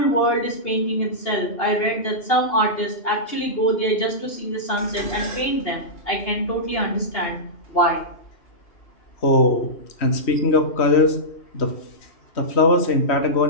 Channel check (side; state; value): right; late; 2.8 ms